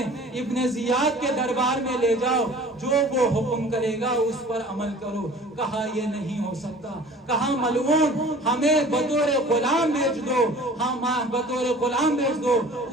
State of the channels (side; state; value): both; normal; correlation 0.46